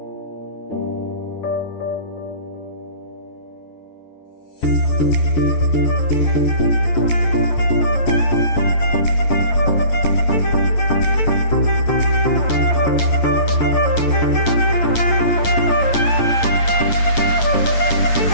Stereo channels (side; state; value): right; late; 9.0 ms